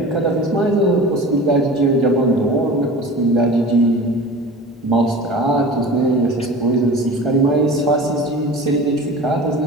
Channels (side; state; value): both; normal; correlation 0.37